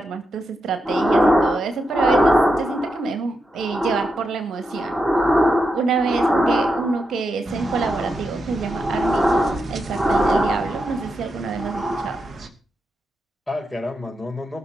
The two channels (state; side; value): normal; both; correlation 0.86